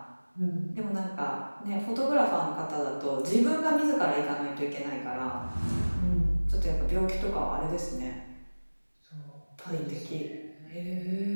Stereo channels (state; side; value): inverted; both; correlation -1.00